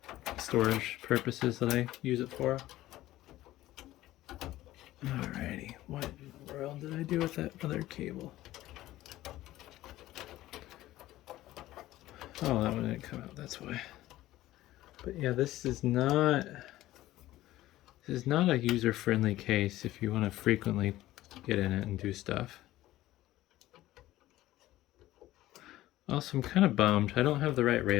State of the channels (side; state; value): right; quieter; 15.7 dB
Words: storage purposes that I use it for. Alrighty, what in the world did I do with that other cable? Oh, that one didn't come out, that's why. But yeah, this is not a user-friendly case if you want to frequently get in it and do stuff. Also, I'm kind of bummed. I don't have the right